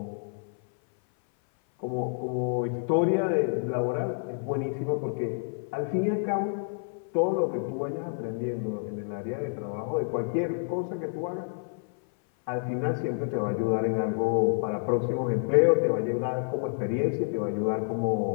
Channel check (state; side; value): silent; right; 57 dB below the other